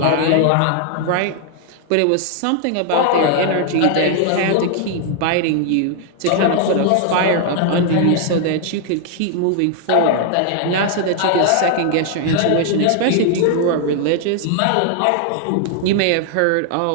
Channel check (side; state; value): both; different; correlation 0.00